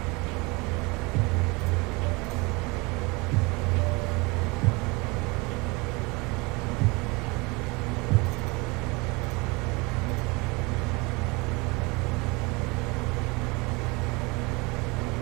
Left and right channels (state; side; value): quieter; left; 26.3 dB